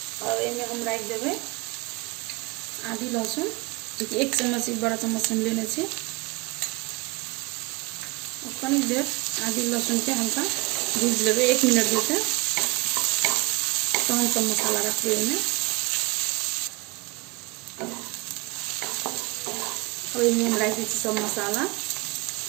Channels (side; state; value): left; quieter; 25.8 dB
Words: और एमे हम राख देबै आधी लहसुन, जो कि 1 चम्मच बड़ा चम्मच हम लेने छी। और कनिक देर आधी लहसुन के हल्का भूज लेबै 1 मिनट देते, तहन सब मसाला रखबै एमे। और एमे हम राख दै छी सब मसाला।